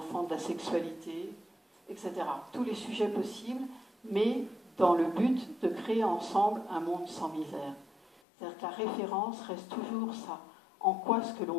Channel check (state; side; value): drops out; right; at 8.2 s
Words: de la sexualité, etc. Tous les sujets possibles, mais dans le but de créer ensemble un monde sans misère. C'est-à-dire que la référence reste toujours ça. En quoi ce que